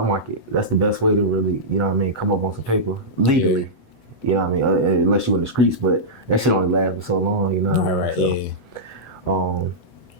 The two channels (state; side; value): late; right; 8.0 ms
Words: market. That's the best way to really, you know what I mean, come up on some paper legally. Yeah. You know what I mean? Unless you in the streets, but that shit only lasts for so long, you know what I mean? Right, so,